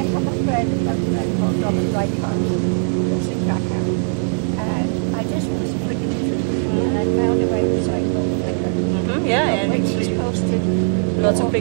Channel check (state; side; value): silent; left; digital silence